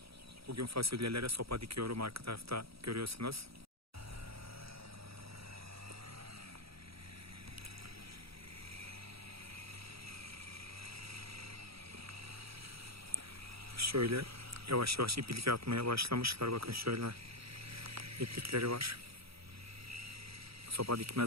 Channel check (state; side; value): late; left; 0.76 ms